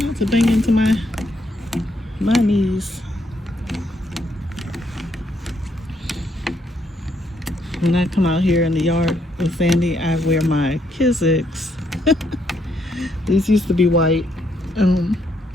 to bang into my knees. When I come out here in the yard with Sandy, I wear my Kizik's. These used to be white.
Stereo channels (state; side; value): normal; both; correlation 0.74